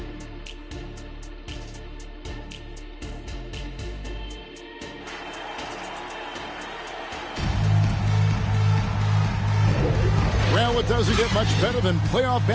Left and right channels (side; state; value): both; identical; correlation 1.00